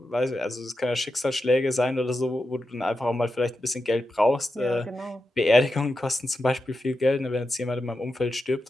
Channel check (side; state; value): both; normal; correlation 0.89